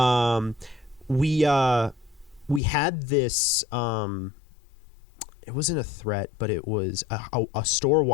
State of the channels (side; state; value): right; drops out; at 2.6 s